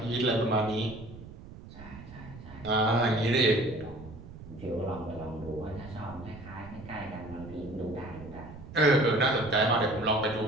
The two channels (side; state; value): right; noise; rumble, 15 dB below the sound